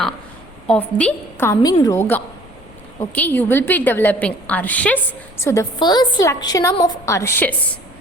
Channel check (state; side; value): noise; left; rumble, 23 dB below the sound